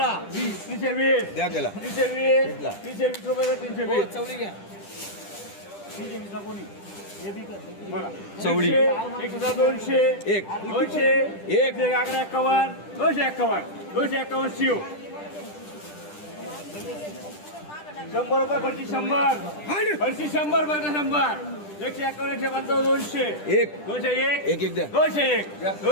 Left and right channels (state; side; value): late; right; 10 ms